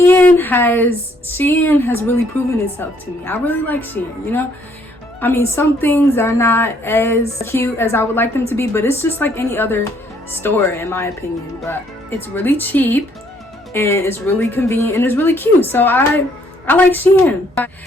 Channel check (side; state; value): both; normal; correlation 0.66